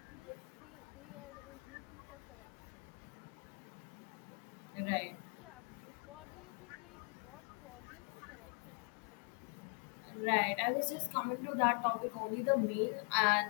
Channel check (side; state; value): right; quieter; 37.8 dB